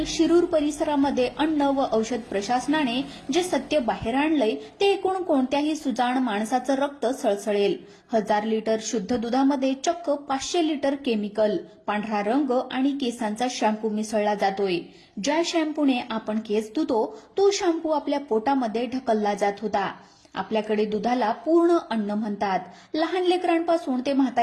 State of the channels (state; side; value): identical; both; correlation 1.00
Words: शिरूर परिसरामध्ये अन्न व औषध प्रशासनाने जे सत्य बाहेर आणलंय ते ऐकून कोणत्याही सुजाण माणसाचं रक्त सळसळेल. 1000 लिटर शुद्ध दुधामध्ये चक्क 500 लिटर केमिकल, पांढरा रंग आणि केसांचा शॅम्पू मिसळला जातोय. ज्या शॅम्पूने आपण केस धुतो तो शॅम्पू आपल्या पोटामध्ये ढकलला जात होता. आपल्याकडे दुधाला पूर्ण अन्न म्हणतात. लहान लेकरांपासून ते